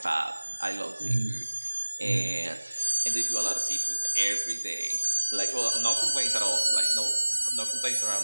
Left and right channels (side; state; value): both; inverted; correlation -1.00